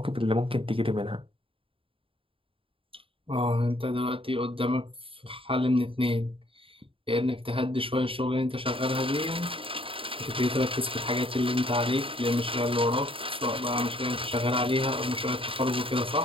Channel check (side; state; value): left; late; 0.26 ms